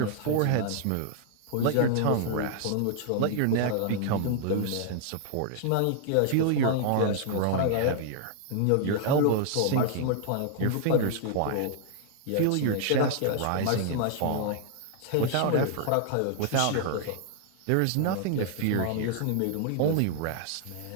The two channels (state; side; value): different; both; correlation 0.00